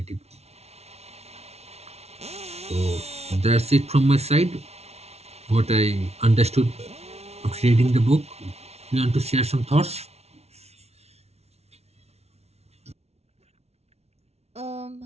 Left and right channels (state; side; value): late; left; 0.31 ms